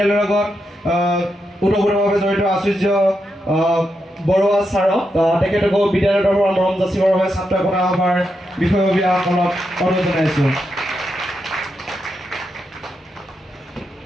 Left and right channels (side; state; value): both; normal; correlation 0.84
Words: লগত ওতঃপ্ৰোতভাৱে জড়িত আচুৰ্য বৰুৱা ছাৰক। তেখেতকো বিদ্যালয়ৰ তৰফৰ পৰা মৰম যাচিবৰ বাবে ছাত্ৰ একতা সভাৰ বিষয়ববীয়াসকলক অনুৰোধ জনাইছোঁ।